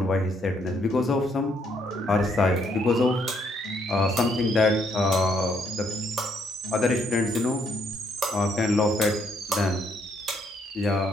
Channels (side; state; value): both; normal; correlation 0.71